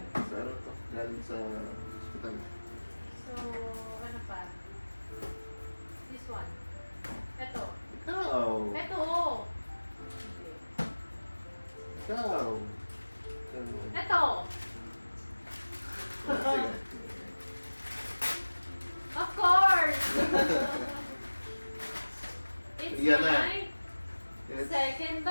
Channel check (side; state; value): both; inverted; correlation -1.00